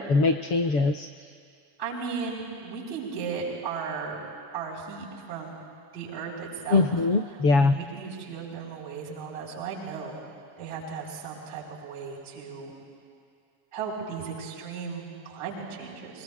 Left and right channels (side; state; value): right; late; 7.1 ms